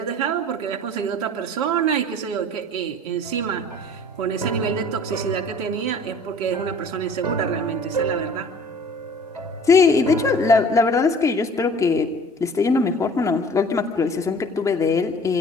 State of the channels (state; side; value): normal; both; correlation 0.48